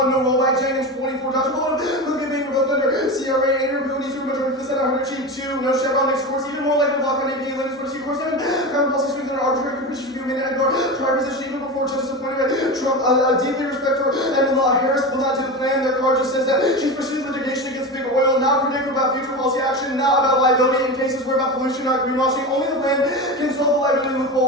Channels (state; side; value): normal; both; correlation 0.24